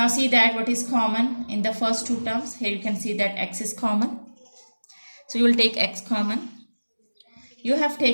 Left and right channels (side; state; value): both; inverted; correlation -1.00